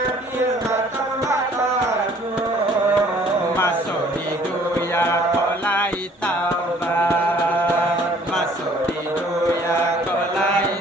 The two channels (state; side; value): normal; both; correlation 0.57